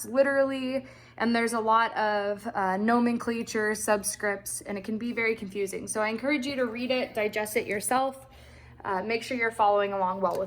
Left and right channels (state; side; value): identical; both; correlation 1.00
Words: literally, and there's a lot of nomenclature, subscripts, and it can be very confusing. So I encourage you to read it, digest it yourself. Make sure you're following along well